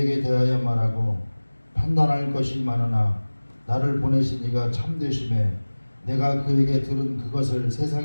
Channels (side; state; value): both; inverted; correlation -1.00